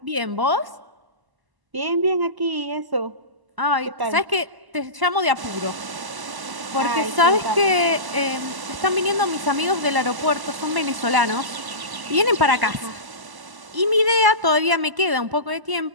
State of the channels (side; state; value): left; late; 1.0 ms